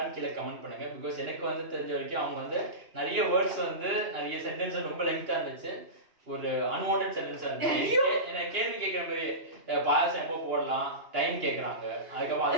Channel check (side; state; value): left; late; 2.9 ms